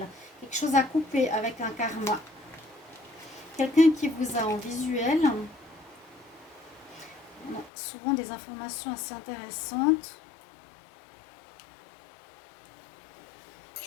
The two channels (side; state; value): right; drops out; at 7.7 s